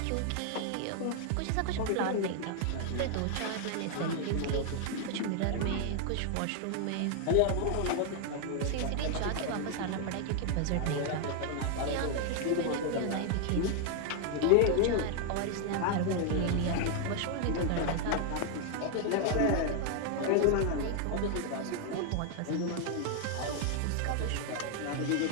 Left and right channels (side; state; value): both; different; correlation 0.00